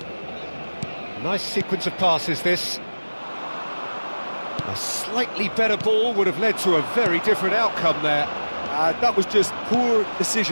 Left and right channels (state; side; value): inverted; both; correlation -1.00